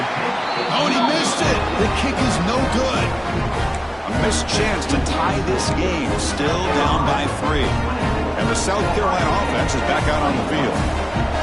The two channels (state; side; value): identical; both; correlation 1.00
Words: Oh, and he missed it. The kick is no good. A missed chance to tie this game. Still down by 3. And the South Carolina offense is back out on the field.